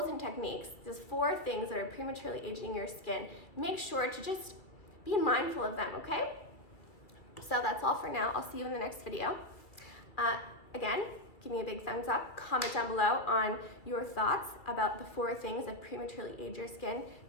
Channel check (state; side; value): late; right; 2.1 ms